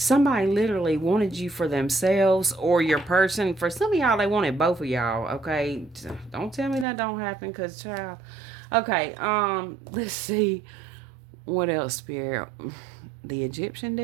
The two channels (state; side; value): drops out; left; at 6.9 s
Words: literally wanted you for themselves or your person. For some of y'all, they wanted both of y'all. Okay, don't tell me that don't happen, cause child. Okay, let's see what else, Spirit. The Egyptian